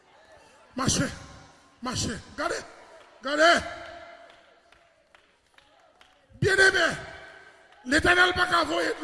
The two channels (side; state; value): both; identical; correlation 1.00